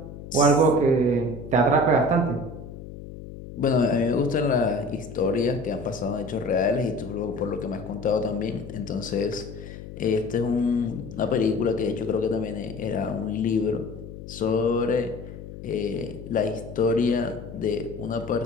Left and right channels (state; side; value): noise; left; hum, 13 dB below the sound